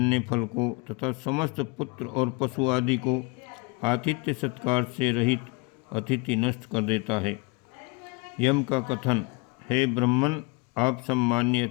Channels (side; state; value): right; quieter; 28.0 dB